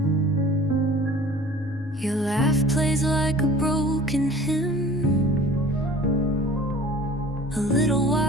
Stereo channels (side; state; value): both; normal; correlation 0.45